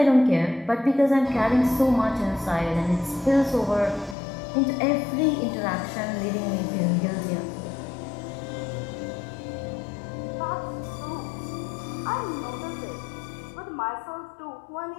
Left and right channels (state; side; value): drops out; right; at 4.2 s